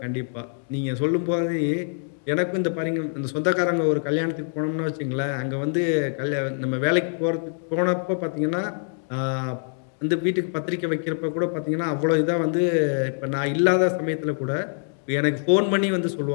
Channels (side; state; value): right; silent; 58 dB below the other